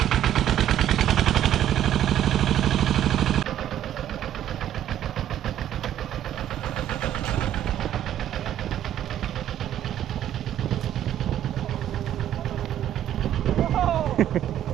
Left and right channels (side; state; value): left; quieter; 11.3 dB